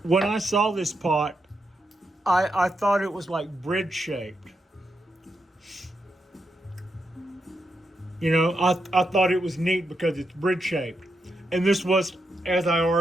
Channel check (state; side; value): normal; both; correlation 0.84